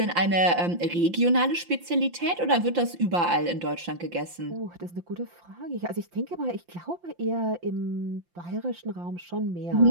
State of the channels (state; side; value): late; left; 5.8 ms